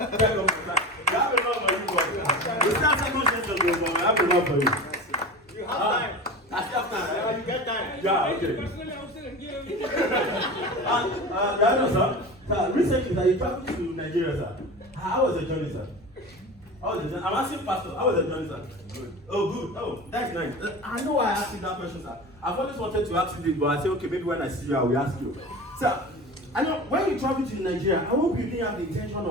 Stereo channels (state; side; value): normal; both; correlation 0.32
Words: get up for that. You have enough for you, boy. You start second session, but I have enough for you. You have time. I still have time. You get time. Yeah, okay. Sir, recently, sir, you traveled to Nigeria, sir. How was the journey, sir? I'm asking Pastor, how was the journey, sir? Good. Oh, good. Oh, that's nice. I know why I asked you that question, sir. I've always wanted to ask you this, but I said, okay, maybe when I see you, I will ask you. Sir, I know when you travel to Nigeria, I hope you didn't have the intention